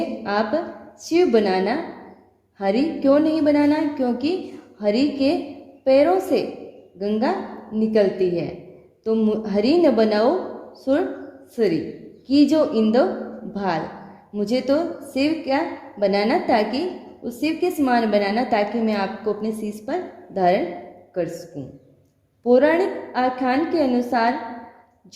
आप शिव बनाना, हरि क्यों नहीं बनाना, क्योंकि हरि के पैरों से गंगा निकलती है। तो हरि न बनाओ सुरसुरी, कि जो इंदो भाल, मुझे तो शिव क्या बनाना, ताकि उस शिव के समान बनाना, ताकि मैं आपको अपने शीश पर धारण कर सकूं। पौराणिक आख्यान के अनुसार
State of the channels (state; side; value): identical; both; correlation 1.00